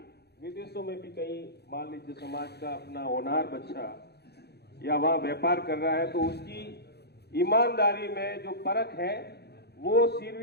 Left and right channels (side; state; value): right; late; 0.48 ms